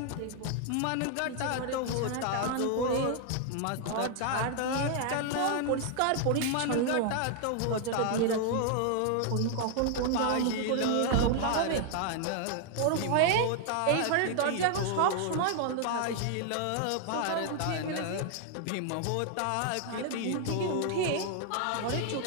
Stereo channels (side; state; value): both; different; correlation 0.00